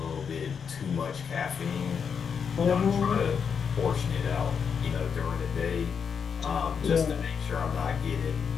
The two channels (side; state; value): right; quieter; 6.7 dB